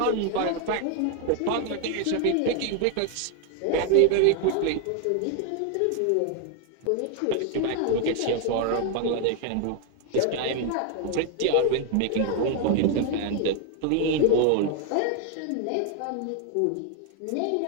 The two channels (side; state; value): both; different; correlation 0.00